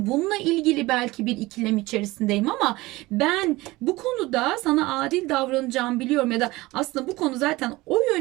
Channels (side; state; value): left; quieter; 20.3 dB